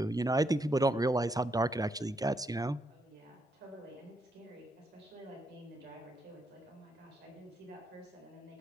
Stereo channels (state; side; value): normal; both; correlation 0.77